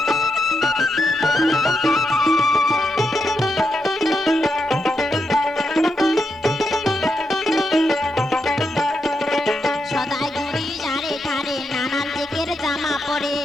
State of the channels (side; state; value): both; normal; correlation 0.84